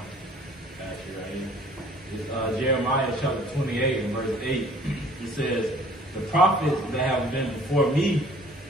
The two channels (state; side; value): normal; both; correlation 0.54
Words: you right here. Jeremiah chapter 28 and verse 8. It says, "The prophets that have been before me